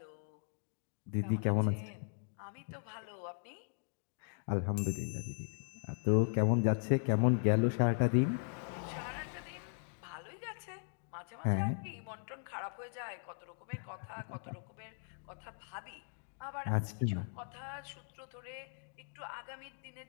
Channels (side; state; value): right; silent; 52 dB below the other